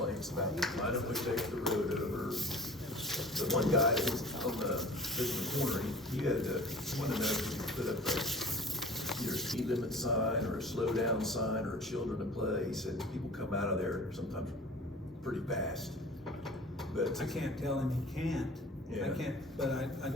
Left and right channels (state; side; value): normal; both; correlation 0.43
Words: about, I don't wish they took the road over. The one guy that was on the corner, he had wanted to know if he could put up either a speed limit sign or a slow down sign or a children to play. He said people come out of there sometimes pretty fast. But I can't tell him he can't. Yeah. I can't, but I